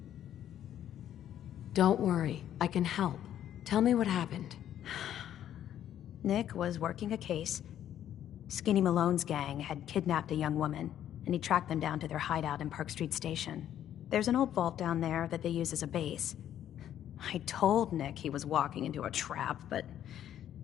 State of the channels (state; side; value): quieter; right; 10.9 dB